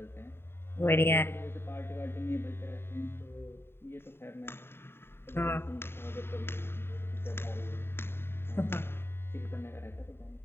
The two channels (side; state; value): right; late; 0.11 ms